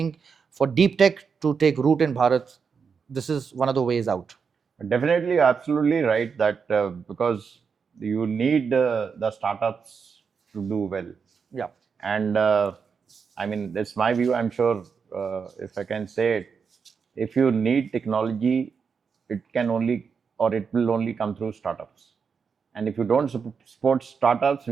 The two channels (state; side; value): quieter; left; 5.9 dB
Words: for deep tech to take root in Bharat, this is one of the ways out. Definitely, absolutely right, that because you need the startups to do well. Yeah. And I mean, that's my view. I'm sure if I can say it, if you need technology, it can only, or it will only come through startups. And if you don't support startups,